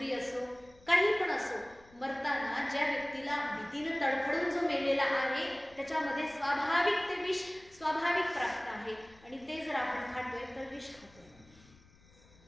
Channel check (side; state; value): left; noise; rumble, 27 dB below the sound